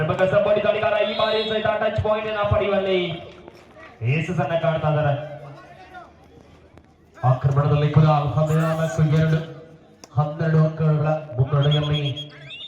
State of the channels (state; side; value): identical; both; correlation 1.00